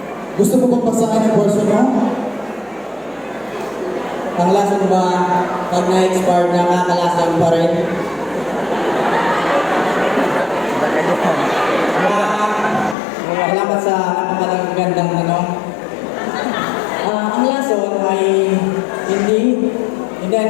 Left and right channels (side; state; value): right; drops out; at 13.0 s